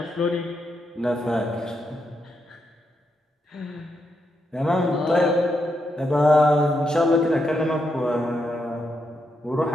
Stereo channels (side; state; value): both; normal; correlation 0.82